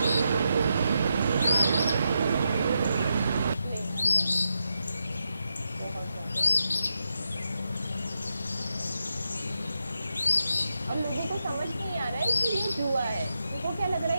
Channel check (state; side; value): inverted; both; correlation -0.85